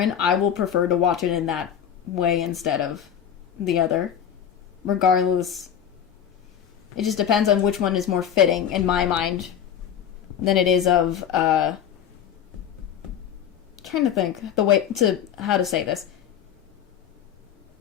I will prefer to watch it in that way instead of the other. Regardless, it just depends on which one is more fitting in my mind than it is of trying to think the way to how to say this.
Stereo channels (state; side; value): quieter; right; 8.9 dB